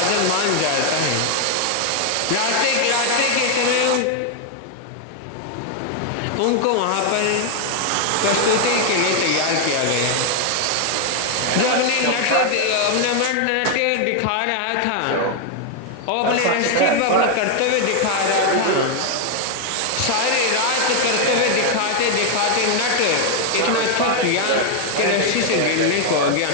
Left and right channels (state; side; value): different; both; correlation 0.00